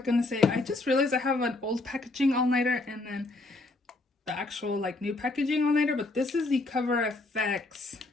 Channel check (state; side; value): quieter; right; 3.0 dB